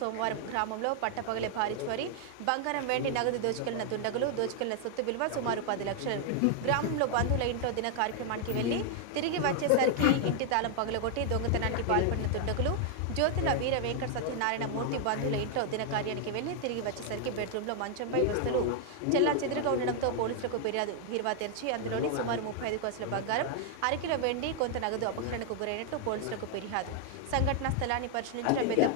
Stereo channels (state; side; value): different; both; correlation 0.00